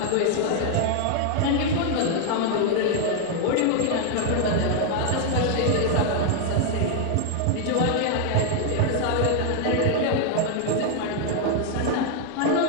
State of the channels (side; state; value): both; different; correlation 0.00